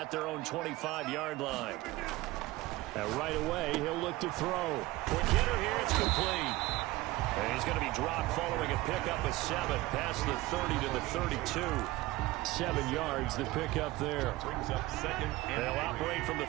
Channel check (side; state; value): left; quieter; 18.8 dB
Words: their own 25-yard line. And right away, he'll look to throw. Quick hitter here, it's complete. And he's going to be dropped following a pickup of 7 past the 30 to the 32. 7 yards, the pickup there. Brings up 2nd and They'll operate from the